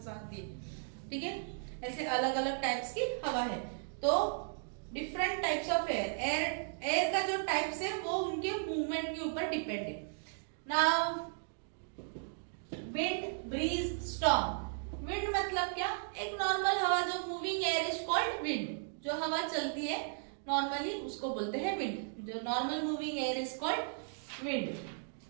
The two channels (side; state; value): left; silent; digital silence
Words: आती है। ठीक है, ऐसे अलग अलग टाइप्स की हवा है। तो डिफरेंट टाइप्स ऑफ एयर का जो टाइप्स है वो उनके मूवमेंट के ऊपर डिपेंड है। Now wind, breeze, storm. Wind मतलब क्या? एक नॉर्मल हवा, जो moving air is called wind. जो हवा चलती है नॉर्मली उसको बोलते हैं विंड। जो normal moving air is called wind.